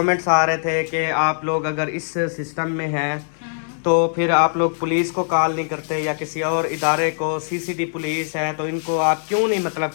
आ रहे थे कि आप लोग अगर इस सिस्टम में हैं तो फिर आप लोग पुलिस को कॉल नहीं करते या किसी और इदारे को, सीसीडी पुलिस है तो इनको आप क्यों नहीं मतलब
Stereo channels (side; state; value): right; silent; digital silence